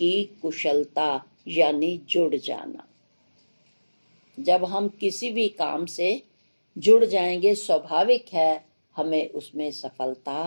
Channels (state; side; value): inverted; both; correlation -1.00